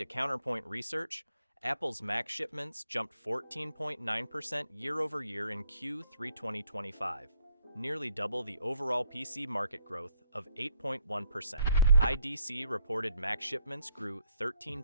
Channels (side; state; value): both; inverted; correlation -0.69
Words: Counterpoint Research, Apple's Mac shipments jumped 14.9% year over year in Q3 2025, nearly double the overall PC market growth of 8.1%. IDC reported Mac shipments grew